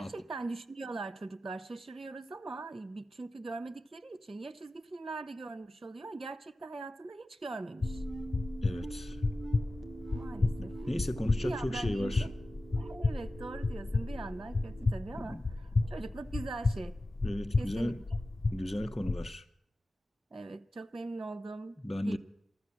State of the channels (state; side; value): normal; both; correlation 0.94